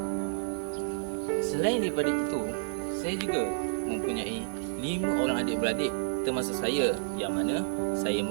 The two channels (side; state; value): left; silent; digital silence